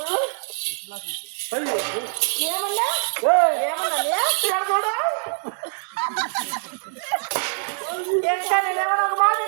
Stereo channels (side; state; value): left; silent; 63 dB below the other